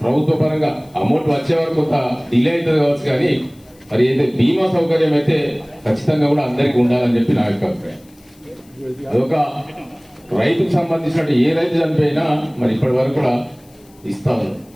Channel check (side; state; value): left; noise; hiss, 30 dB below the sound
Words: ప్రభుత్వ పరంగా అమౌంట్ వచ్చే వరకు కొంత డిలే అవుతుంది కావచ్చు, కానీ మరి అయితే బీమా సౌకర్యం అయితే ఖచ్చితంగా కూడా అందరికీ ఉండాలని చెప్పి నా యొక్క అభిప్రాయం. అదొక రైతుకు సంబంధించినట్టు ఏ రైతు చనిపోయినా మరి ఇప్పటి వరకు కూడా ఇస్తా ఉన్నారు,